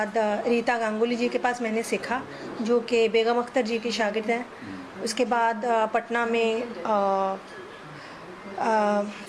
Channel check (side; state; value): both; identical; correlation 1.00